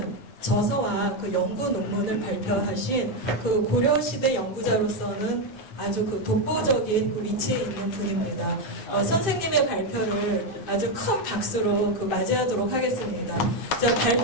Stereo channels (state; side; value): late; right; 9.6 ms